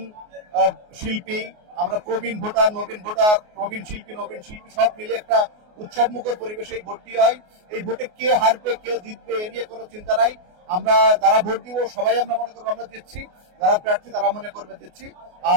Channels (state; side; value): late; left; 28 ms